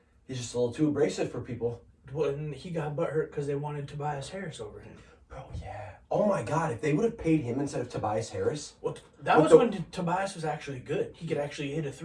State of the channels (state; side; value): identical; both; correlation 1.00